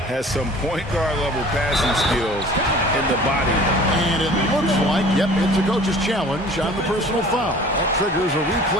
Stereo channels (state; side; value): normal; both; correlation 0.46